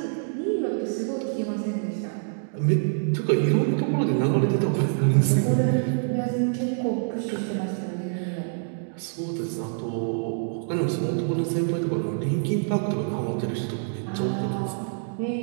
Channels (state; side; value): silent; left; digital silence